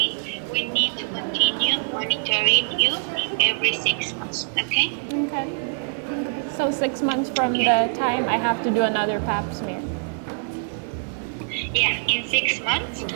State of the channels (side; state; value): left; silent; digital silence